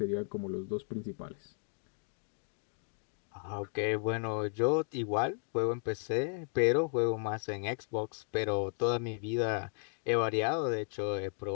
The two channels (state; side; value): silent; right; 55 dB below the other